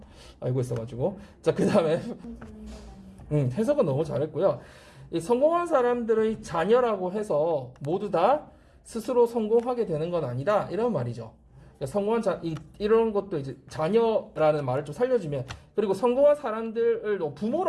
알고 있어가지고. 자, 그 다음에 해석은 너무 잘했고요. 이 성공한 사람들의 자녀라고 해서 모두 다 스스로 성공하게 되는 건 아니다. 이런 말이죠. 그러니까 이런 것도 이제 자녀라는 말을 좀 살려주면, 그리고 성공한 사람들을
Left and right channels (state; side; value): identical; both; correlation 1.00